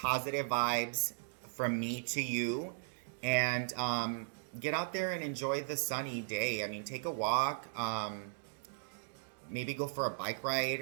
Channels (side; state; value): left; silent; digital silence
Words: vibes from me to you. And get out there and enjoy the sunny day. I mean, take a walk. Maybe go for a bike